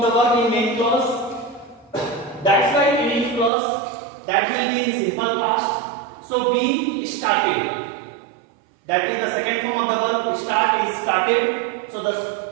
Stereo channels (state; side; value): drops out; left; at 3.5 s